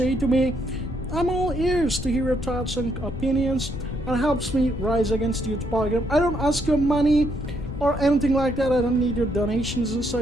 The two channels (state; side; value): noise; left; rumble, 8 dB below the sound